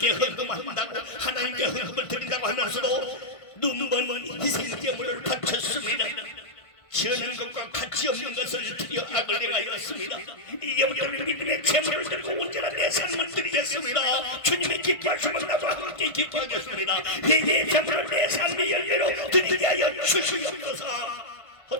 헌금한다고 하나님께 헌금을 드린다고 하면서도 눈먼 희생제물을 바쳤습니다. 지어낸 것과 가치 없는 것을 드려 악을 행하였습니다. 이제부터는 믿음의 제물을 들고 언제나 내 삶을 드리겠습니다. 주님의 기뻐하시면 나도 함께 기뻐하겠습니다. 회개의 제물을 내 삶의 열매로 드리게 하여 주시옵소서.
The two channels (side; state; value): right; late; 1.5 ms